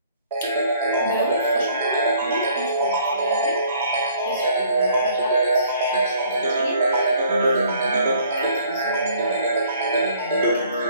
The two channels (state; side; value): inverted; both; correlation -0.59